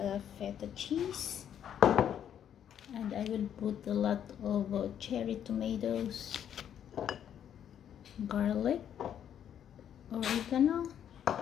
feta cheese, and I will put a lot of cherry tomatoes, garlic, oregano,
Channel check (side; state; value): right; quieter; 9.5 dB